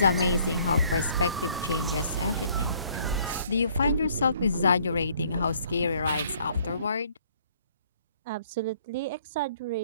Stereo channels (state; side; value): inverted; both; correlation -0.62